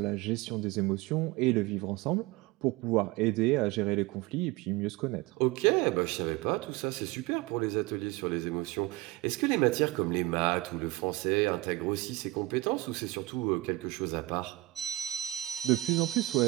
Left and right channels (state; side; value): quieter; left; 19.2 dB